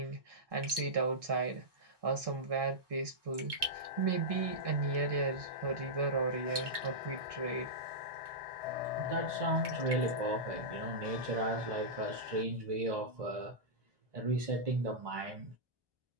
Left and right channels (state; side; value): late; left; 1.2 ms